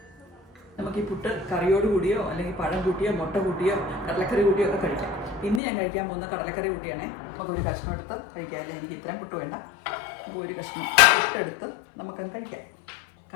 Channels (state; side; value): drops out; right; at 5.6 s